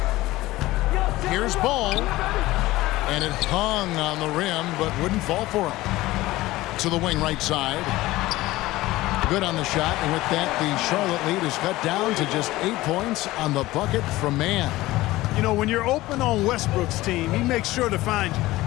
Here's Ball. And it hung on the rim, but wouldn't fall for him. To the wing right side. Good on the shot, and with that, the Charlotte lead is cut down to just 8 points on the bucket from Mann. You know, when you're open on Westbrook's team, he makes sure to find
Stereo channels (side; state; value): right; quieter; 17.9 dB